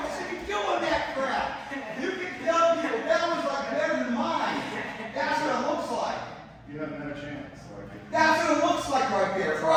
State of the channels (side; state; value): both; identical; correlation 1.00